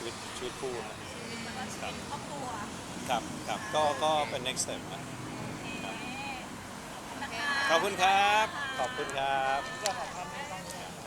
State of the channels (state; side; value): identical; both; correlation 1.00